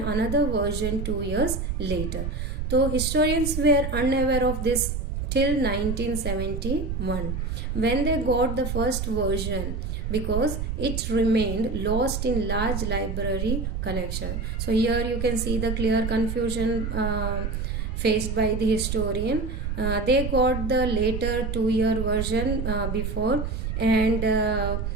version 2 years later. So historians were unaware of this till 1971, when they got the first version, because it remained lost in large library collection. So here you can see the clear confusion faced by the historian. They got the later 2-year version before, and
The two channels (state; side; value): noise; right; rumble, 3 dB below the sound